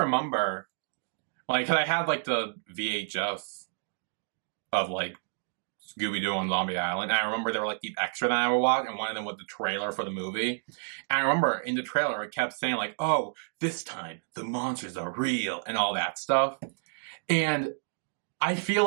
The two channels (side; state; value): left; silent; digital silence